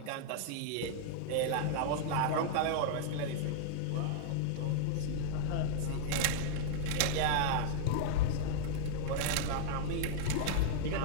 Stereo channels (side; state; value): both; different; correlation -0.01